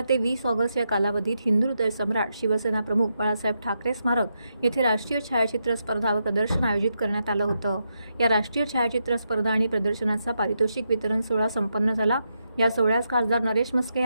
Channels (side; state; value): both; inverted; correlation -0.83